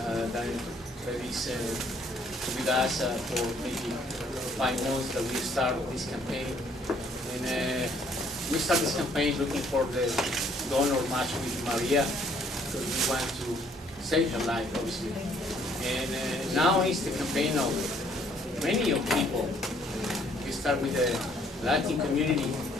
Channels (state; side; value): normal; both; correlation 0.63